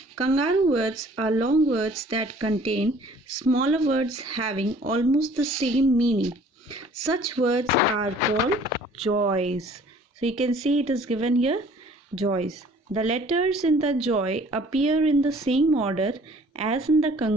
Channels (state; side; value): normal; both; correlation 0.53